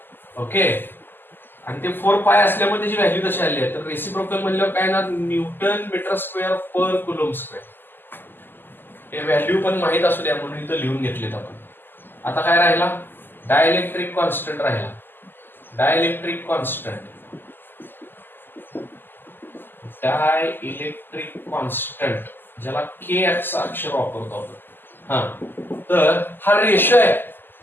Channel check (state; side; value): late; right; 0.095 ms